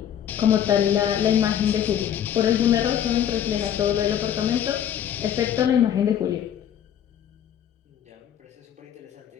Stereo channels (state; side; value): quieter; right; 9.8 dB